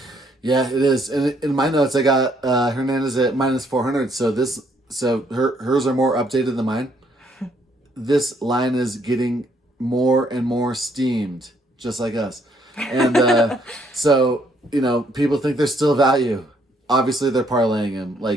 Yeah, it is. And in my notes, I got Hernandez at minus 400. So hers are more updated than mine. This line is getting more and more steamed, just like us. And so, people think there's still value. Obviously, they're parlaying him.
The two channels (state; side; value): normal; both; correlation 0.69